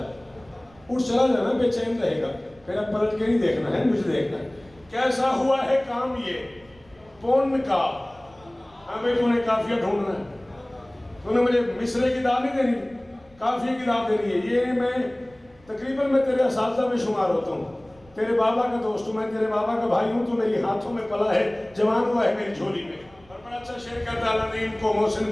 उठ चला जाना, बेचैन रहेगा, फिर अब पलट के नहीं देखना है, मुझे देखना है। कैसा हुआ है काम ये पुण्य का। हाँ भाई तूने काफिया ढूंढना है, तूने मुझे मिसरे की दाल नहीं देनी, काफिया की दाल देनी है। ये मैं तकरीबन मैं तेरे असातिज़ा में शुमार होता हूँ, तेरे बाबा का दोस्त हूँ, मैं तेरे बाबा का भाई हूँ, तू मेरी हाथों में पला है, जवान हुआ है मेरी झोली में। और बड़ा अच्छा शेर कहता है, अल्लाह ने इनको मोहसिन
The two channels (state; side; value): noise; right; rumble, 28 dB below the sound